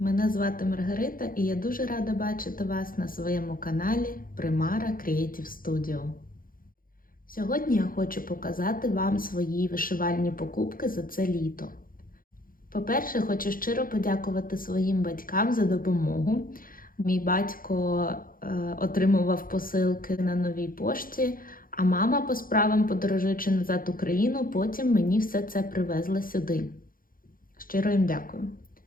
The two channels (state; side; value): late; right; 0.41 ms